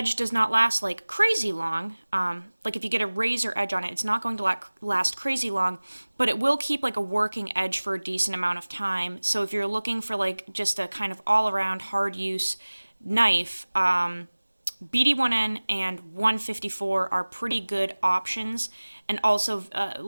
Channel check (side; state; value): both; inverted; correlation -1.00